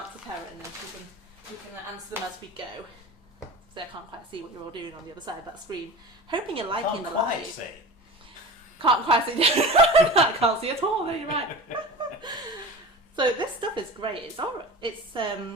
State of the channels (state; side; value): normal; both; correlation 0.33